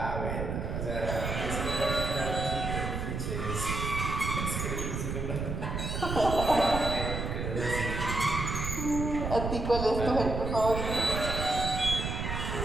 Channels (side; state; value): right; noise; rumble, 3 dB below the sound